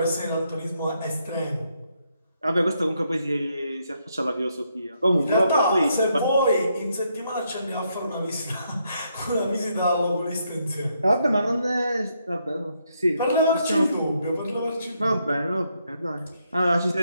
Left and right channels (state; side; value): inverted; both; correlation -0.76